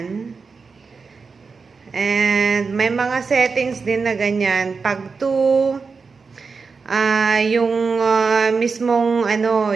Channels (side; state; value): left; quieter; 4.8 dB